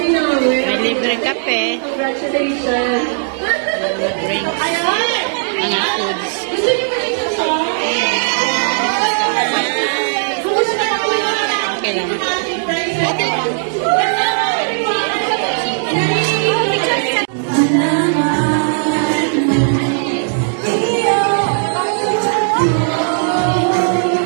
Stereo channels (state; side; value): silent; left; digital silence